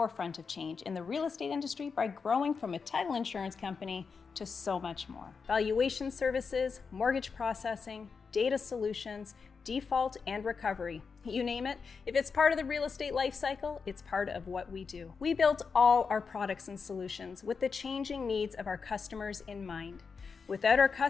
of change in the real estate industry by growing from a title insurance company to so much more. Valuation services, mortgage processing, data solutions, default and recovery. You name it, if it's part of the real estate life cycle, it's part of what we do. We built all our products and solutions with the changing needs of our customers in mind. Without our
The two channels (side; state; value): right; quieter; 5.4 dB